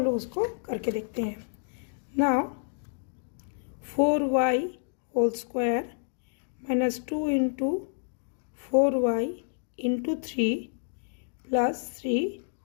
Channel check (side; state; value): right; silent; digital silence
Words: लोग उसको करके देखते हैं। Now 4y whole square minus 2 into 4y into 3 plus 3